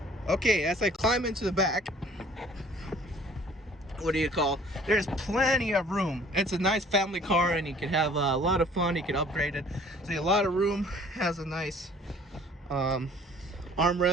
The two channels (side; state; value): both; normal; correlation 0.53